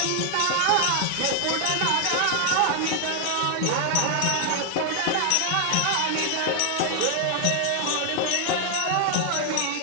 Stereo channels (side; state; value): both; different; correlation 0.00